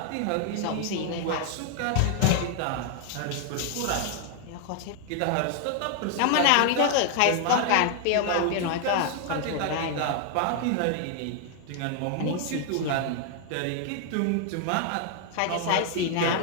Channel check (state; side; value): different; both; correlation 0.00